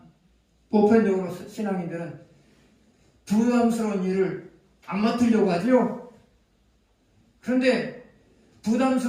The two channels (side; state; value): both; identical; correlation 1.00